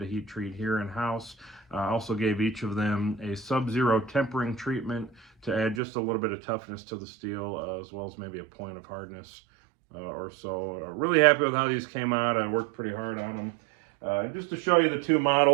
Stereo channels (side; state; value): left; drops out; at 5.8 s